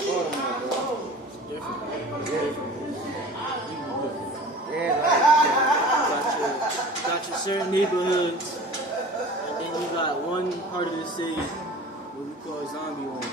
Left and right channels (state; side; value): normal; both; correlation 0.41